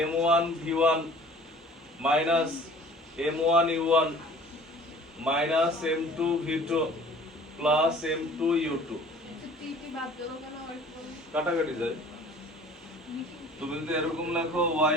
M1 V1 minus M1 U1 minus M2 V2 plus M2 U2, কাটাকাটি যায়। তুমি যদি এরকম লেখো y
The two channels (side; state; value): both; normal; correlation 0.49